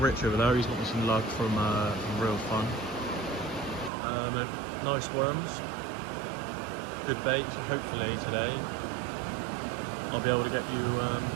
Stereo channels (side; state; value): left; drops out; at 3.9 s